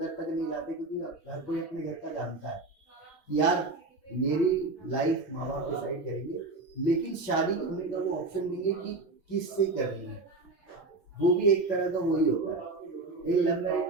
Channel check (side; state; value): left; quieter; 3.3 dB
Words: तक नहीं लाते, क्योंकि हर कोई अपने घर का जानता है यार मेरी लाइफ माँ बाप डिसाइड करेंगे, लेकिन शादी होने का वो ऑप्शन देंगे कि किससे करनी है, वो भी एक तरह का वही होता है। एक लव मैरिज